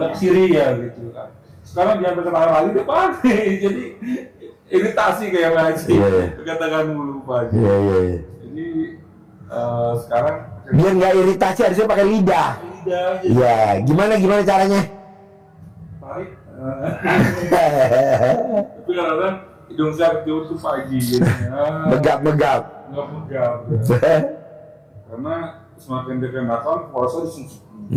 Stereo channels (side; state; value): both; identical; correlation 1.00